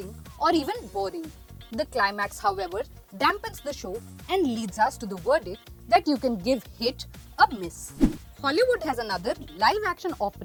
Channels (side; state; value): both; identical; correlation 1.00